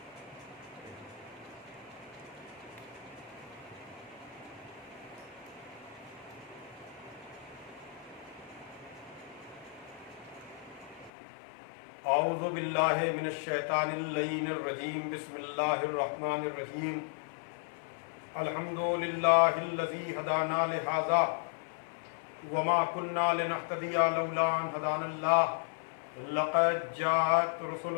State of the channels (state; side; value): drops out; right; at 11.1 s